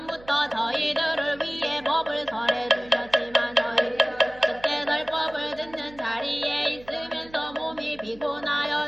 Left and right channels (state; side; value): noise; right; hum, 22 dB below the sound